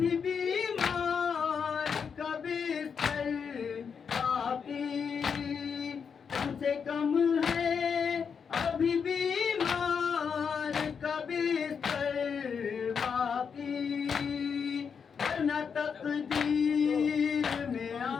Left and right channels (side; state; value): right; quieter; 6.5 dB